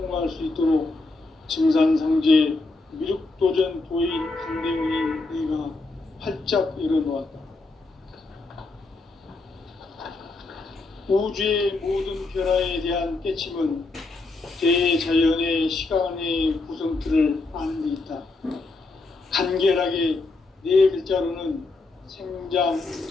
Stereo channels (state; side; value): quieter; right; 3.4 dB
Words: 수 있도록 증산상제 미륵도전 도인 강대훈인 내가 활짝 열어놓았다. 우주의 모든 변화에 대한 깨침은 대자연의 시간의 구성틀을 아는 데 있다. 간결하게 네 글자로는 생장,